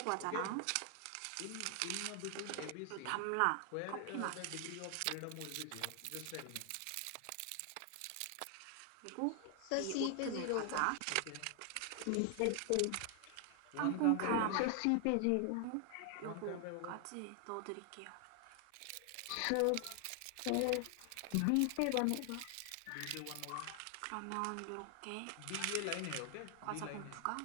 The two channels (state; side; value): different; both; correlation 0.00